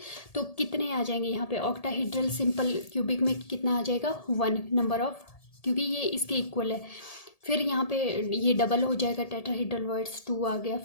तो कितने आ जाएंगे यहाँ पे, ऑक्टाहेड्रल सिंपल क्यूबिक में कितना आ जाएगा, 1 नंबर ऑफ, क्योंकि ये इसके इक्वल है। फिर यहाँ पे ये डबल हो जाएगा, टेट्राहेड्रल वॉइड्स 2 आ गया।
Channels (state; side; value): late; right; 1.8 ms